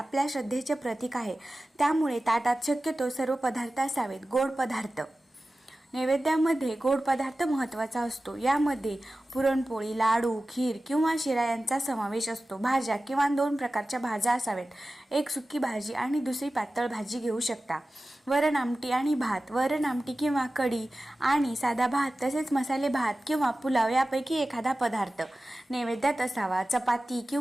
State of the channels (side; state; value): both; normal; correlation 0.95